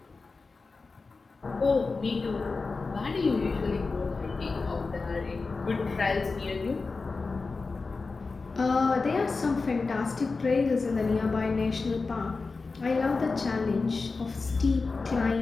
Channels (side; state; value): right; quieter; 4.1 dB